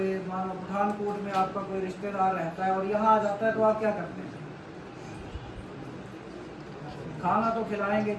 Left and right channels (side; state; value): both; identical; correlation 1.00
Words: मानो पठानकोट में आपका कोई रिश्तेदार रहता है और यहाँ आ जाता है, तो आप क्या करते हैं? खाना तो खिलाएंगे,